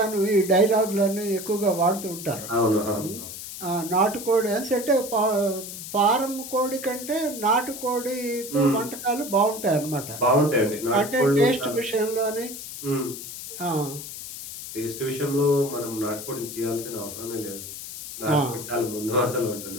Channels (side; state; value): left; noise; hiss, 10 dB below the sound